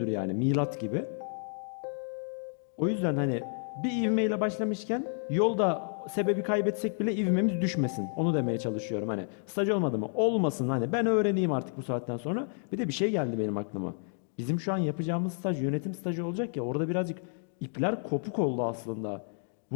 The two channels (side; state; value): right; silent; 57 dB below the other